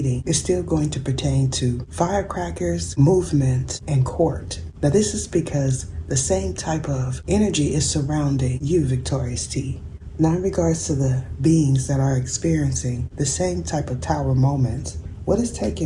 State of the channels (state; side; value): identical; both; correlation 1.00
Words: is still going to pertain to firecrackers, movement, and court. Now this is because the same type of energy is surrounding you, Victorious T. Now, in regards to the beings that are experiencing the same type of tower moments, what is